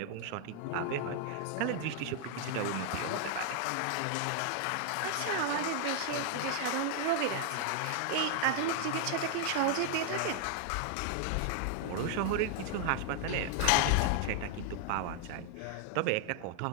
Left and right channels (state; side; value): different; both; correlation 0.00